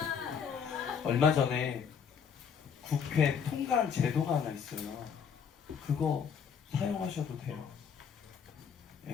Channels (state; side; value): quieter; right; 6.9 dB